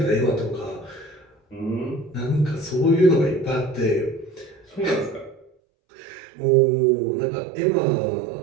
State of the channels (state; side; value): drops out; left; at 5.5 s